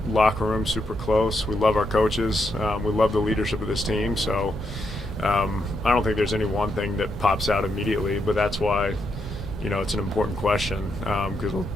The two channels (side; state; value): both; normal; correlation 0.80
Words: locker room's super close. We love our coaches. We love the leadership of this team. So I don't think there's any one thing that pops out immediately, but that's why it's an important question, because